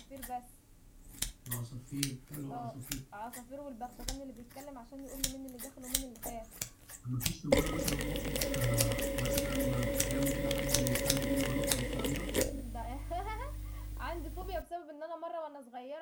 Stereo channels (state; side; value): identical; both; correlation 1.00